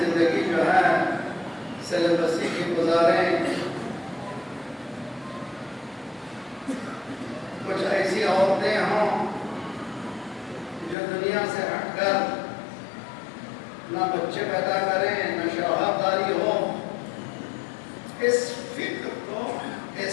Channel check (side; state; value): right; drops out; at 11.0 s